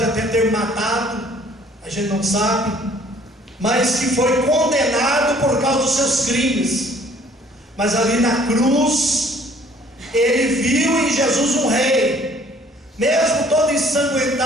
até ter matado, a gente não sabe, mas que foi condenado por causa dos seus crimes. Mas ali na cruz, ele viu em Jesus um rei. Mesmo todo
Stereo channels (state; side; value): normal; both; correlation 0.57